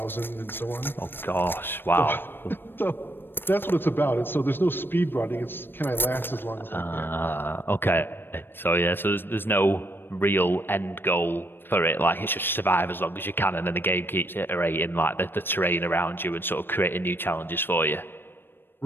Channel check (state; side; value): late; right; 0.098 ms